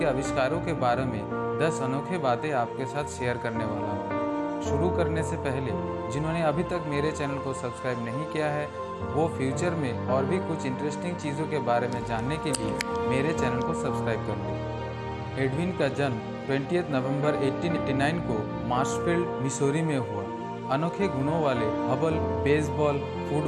आविष्कारों के बारे में 10 अनोखे बातें आपके साथ शेयर करने वाला हूँ। शुरू करने से पहले जिन्होंने अभी तक मेरे चैनल को सब्सक्राइब नहीं किया है, वो फ्यूचर में और भी कुछ इंटरेस्टिंग चीज़ों के बारे में जानने के लिए मेरे चैनल को सब्सक्राइब कर लें। एडविन का जन्म 20 नवंबर 1889 को मार्शफील्ड, मिसौरी में हुआ। अनोखे गुणों वाले हबल बेसबॉल,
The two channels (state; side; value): identical; both; correlation 1.00